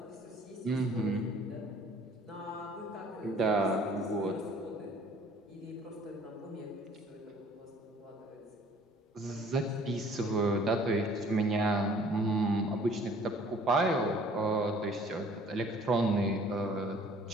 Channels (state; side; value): normal; both; correlation 0.54